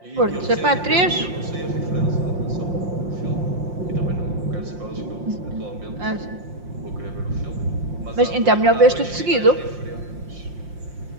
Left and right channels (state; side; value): late; left; 5.7 ms